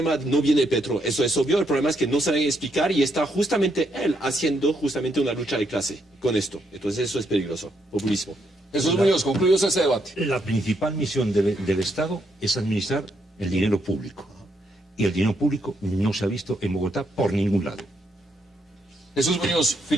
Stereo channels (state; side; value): normal; both; correlation 0.76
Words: no viene de Petro, eso es obvio. El problema es que no saben explicar y está justamente él haciendo justamente una lucha de clase con esto. Entonces eso es peligroso, populismo. Jesús Muñoz, concluyos ese debate. La principal misión del Estado es administrar el dinero público. Y el dinero público no se ha visto en Bogotá por ningún lado. Jesús Muñoz,